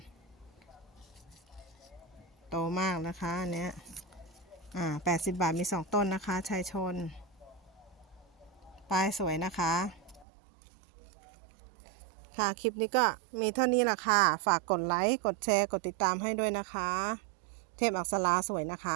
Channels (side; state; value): left; drops out; at 10.2 s